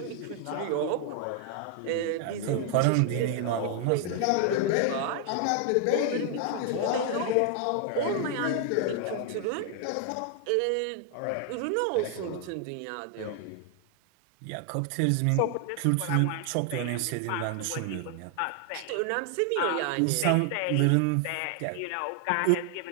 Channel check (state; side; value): different; both; correlation 0.00